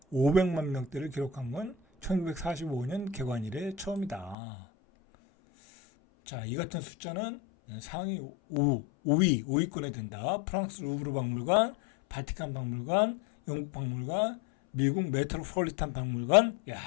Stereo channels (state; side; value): drops out; right; at 4.4 s